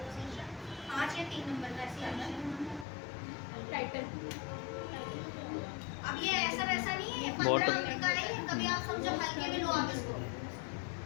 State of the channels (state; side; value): drops out; right; at 2.9 s